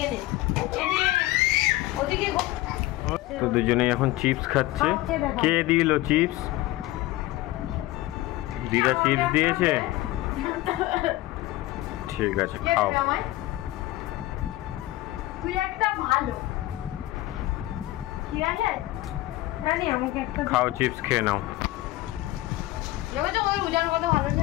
নে ওদিকে। তো দুজনেই এখন চিপস খাচ্ছে। কে দিল চিপস? দিদা চিপস দিয়েছে, ঠিক আছে খাও। তুই একটা ভালো, ঠিক আছে জানি আমাকে একটা খাও, চিপস খেয়ে নাও। দেখো ওই উজার কত ভালো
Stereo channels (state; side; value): quieter; right; 17.4 dB